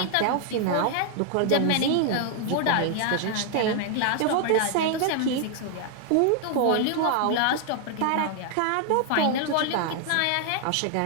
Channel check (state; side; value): different; both; correlation 0.00